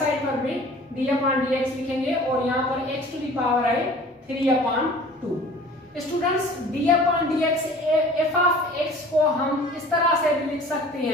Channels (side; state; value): both; normal; correlation 0.46